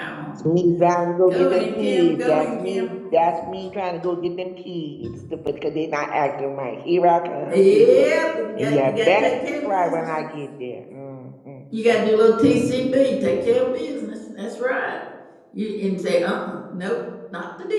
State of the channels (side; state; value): both; identical; correlation 1.00